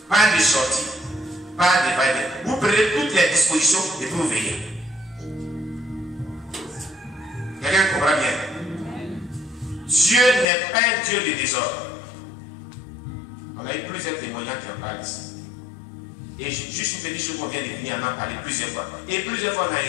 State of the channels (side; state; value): right; drops out; at 10.5 s